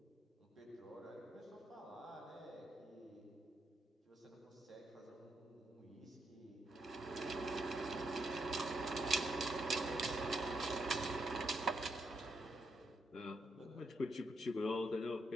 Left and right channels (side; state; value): both; normal; correlation 0.80